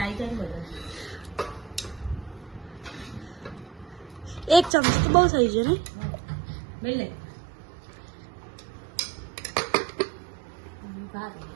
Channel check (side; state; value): left; drops out; at 4.7 s